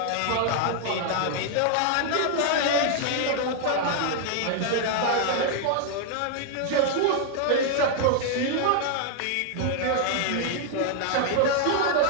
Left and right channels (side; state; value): both; different; correlation 0.00